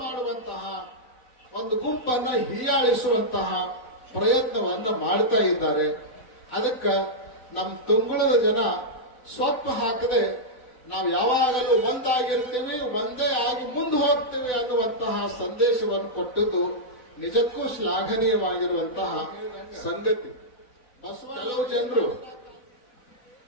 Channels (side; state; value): right; late; 4.0 ms